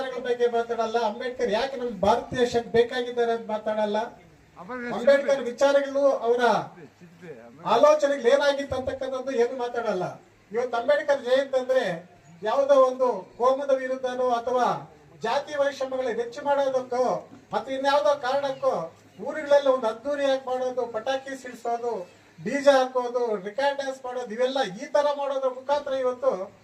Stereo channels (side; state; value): both; identical; correlation 1.00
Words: ಬಗ್ಗೆ ಮಾತಾಡಲ್ಲ, ಅಂಬೇಡ್ಕರ್ ಯಾಕೆ ನಮ್ಮ ಭಾರತ ದೇಶಕ್ಕೆ ಬೇಕಾಗಿದ್ದಾರೆ ಅಂತ ಮಾತಾಡಲ್ಲ, ಅಂಬೇಡ್ಕರ್ ವಿಚಾರಗಳು ಅವರ ಆಲೋಚನೆಗಳು ಏನಾಗಿತ್ತು ಅಂತಕ್ಕಂಥದ್ದು ಏನು ಮಾತಾಡಲ್ಲ. ಇವತ್ತು ಅಂಬೇಡ್ಕರ್ ಜಯಂತಿ ಅಂದ್ರೆ ಯಾವುದೋ ಒಂದು ಕೋಮದ ವಿರುದ್ಧನೋ ಅಥವಾ ಜಾತಿ ವೈಷಮ್ಯಗಳ ಹೆಚ್ಚು ಮಾಡೋದಕ್ಕೋ ಅಥವಾ ಇನ್ಯಾವುದೋ ಕಾರಣಕ್ಕೋ ಊರುಗಳೆಲ್ಲ ಒಂದು ಅದ್ದೂರಿಯಾಗಿ ಮಾಡೋದು, ಪಟಾಕಿ ಸಿಡಿಸೋದು, ಡಿಜೆ ಹಾಕೋದು, ರಿಕಾರ್ಡ್ ಡ್ಯಾನ್ಸ್ ಮಾಡೋದು, ಇವೆಲ್ಲ ಈ ತರ ಮಾಡೋದ್ರ ಮುಖಾಂತರ ಇವತ್ತು